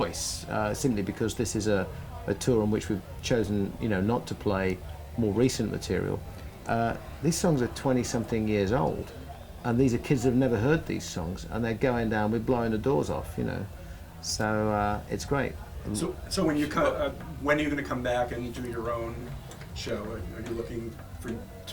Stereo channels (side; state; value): both; identical; correlation 1.00